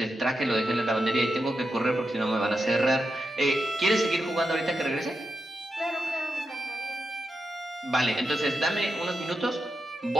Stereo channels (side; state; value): both; normal; correlation 0.87